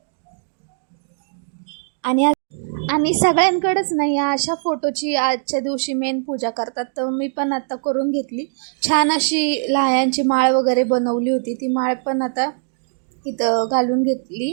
आणि सगळ्यांकडेच नाही अशा फोटोची आजच्या दिवशी मेन पूजा करतात. तर मी पण आता करून घेतली. छान अशी लाह्यांची माळ वगैरे बनवली होती. ती माळ पण आता इथं घालून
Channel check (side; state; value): left; silent; digital silence